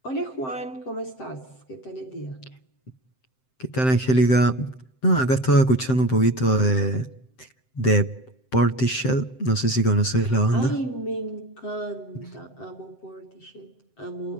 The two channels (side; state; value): right; late; 7.7 ms